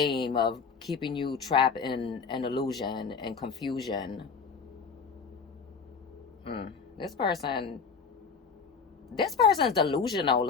of keeping you trapped in an illusion and confusion. This person's delusional,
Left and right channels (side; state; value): right; quieter; 5.7 dB